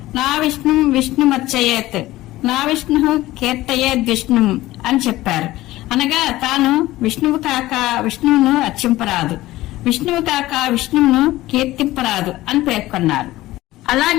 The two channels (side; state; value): right; quieter; 16.9 dB